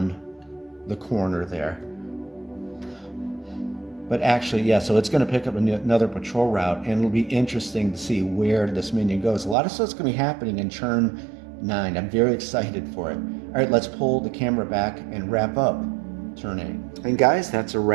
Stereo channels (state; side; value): drops out; left; at 9.6 s